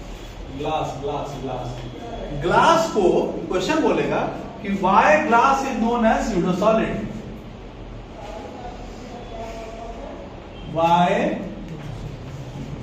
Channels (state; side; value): identical; both; correlation 1.00